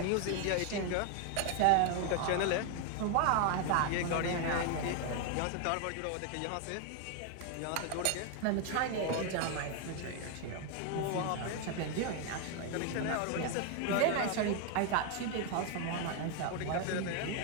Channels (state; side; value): different; both; correlation 0.01